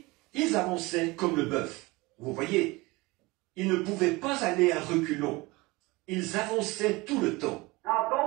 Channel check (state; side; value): quieter; left; 22.9 dB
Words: ils avançaient comme le bœuf. Vous voyez, ils ne pouvaient pas aller à reculons. Ils avançaient tout le temps. Now